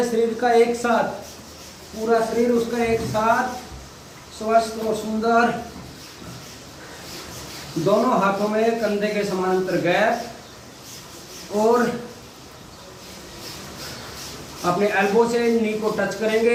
शरीर का एक साथ, पूरा शरीर उसका एक साथ स्वस्थ और सुंदर। दोनों हाथों में कंधे के समानांतर गैप और अपने एल्बो से नी को टच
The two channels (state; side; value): identical; both; correlation 1.00